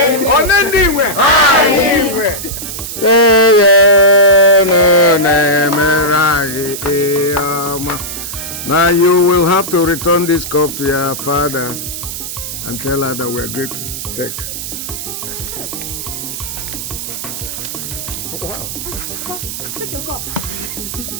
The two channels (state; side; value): noise; right; hiss, 7 dB below the sound